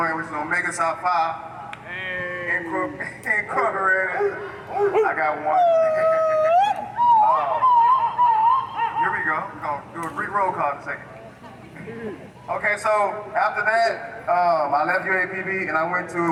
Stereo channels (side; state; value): both; identical; correlation 1.00